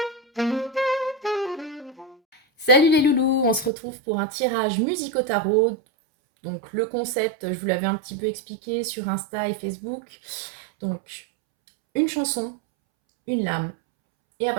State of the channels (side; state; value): left; drops out; at 3.7 s